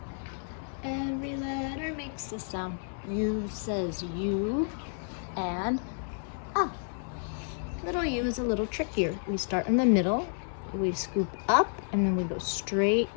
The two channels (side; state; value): right; silent; 57 dB below the other